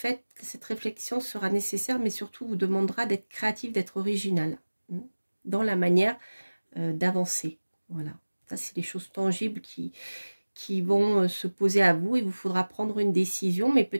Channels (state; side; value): inverted; both; correlation -1.00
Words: que cette réflexion sera nécessaire, mais surtout vous demandera d'être créatif, d'être original dans la manière d'avancer. Voilà, ça c'est les choses tangibles qui vont se poser à vous. Il vous faudra prendre une décision, mais